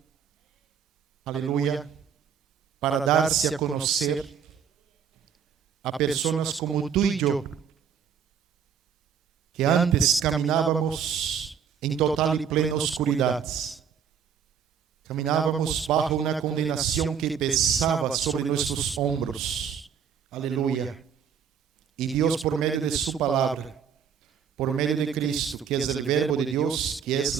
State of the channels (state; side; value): quieter; left; 7.5 dB